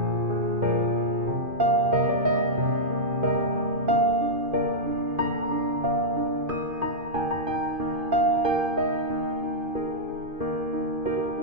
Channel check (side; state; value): left; late; 2.5 ms